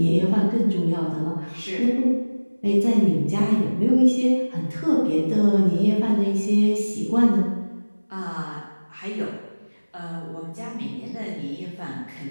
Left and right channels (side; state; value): both; inverted; correlation -1.00